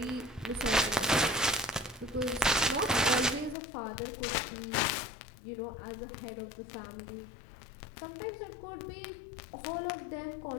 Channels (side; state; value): right; drops out; at 3.6 s